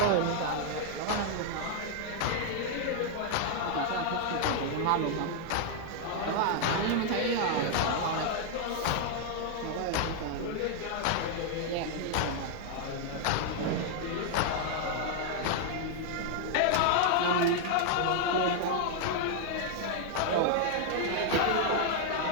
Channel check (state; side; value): different; both; correlation 0.00